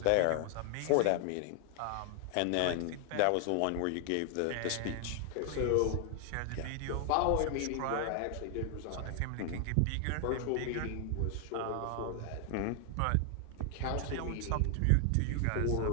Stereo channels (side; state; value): both; different; correlation 0.00